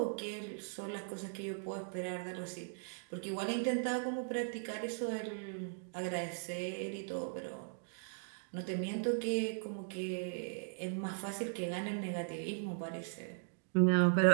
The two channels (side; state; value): left; silent; digital silence